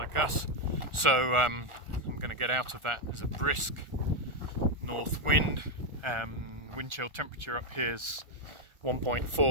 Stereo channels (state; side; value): late; left; 1.4 ms